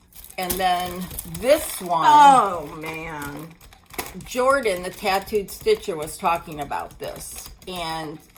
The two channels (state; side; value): identical; both; correlation 1.00